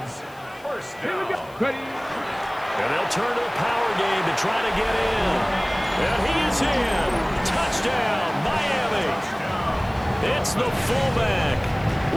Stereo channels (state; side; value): noise; left; hiss, 26 dB below the sound